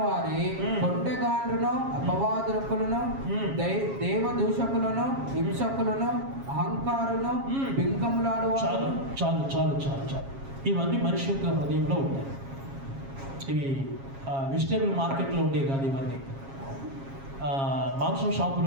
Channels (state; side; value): late; left; 7.3 ms